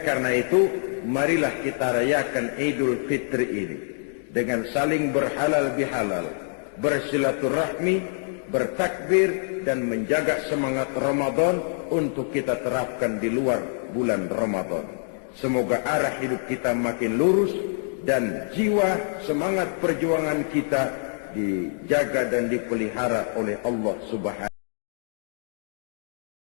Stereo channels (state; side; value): silent; right; digital silence